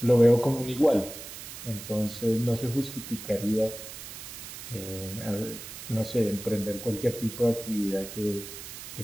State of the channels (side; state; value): right; noise; hiss, 11 dB below the sound